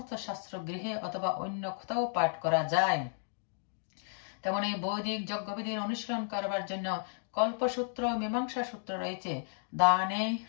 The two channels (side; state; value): right; silent; digital silence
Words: শাস্ত্র গৃহে অথবা অন্য কোথাও পাঠ করা যায়। তেমন এই বৈদিক যজ্ঞবিধির অনুশীলন করবার জন্য কল্পসূত্র, মীমাংসা সূত্র রয়েছে। দানে